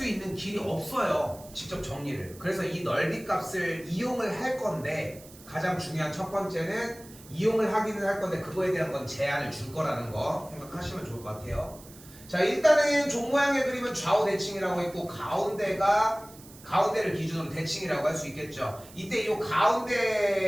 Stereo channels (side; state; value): right; noise; hiss, 20 dB below the sound